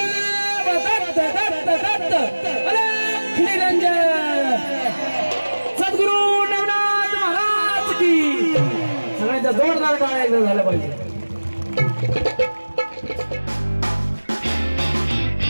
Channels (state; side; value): inverted; both; correlation -1.00